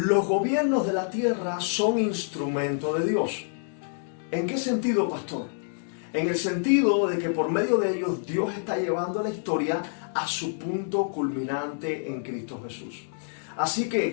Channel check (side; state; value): right; silent; digital silence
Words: gobiernos de la tierra son instrumento de Dios. ¿En qué sentido, pastor? En el sentido de que por medio de ellos Dios está llevando la historia a su punto culminante en Cristo Jesús. Así